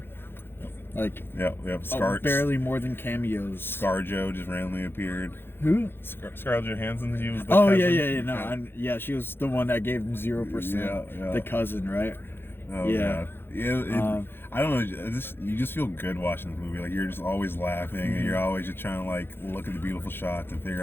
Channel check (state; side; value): late; right; 0.10 ms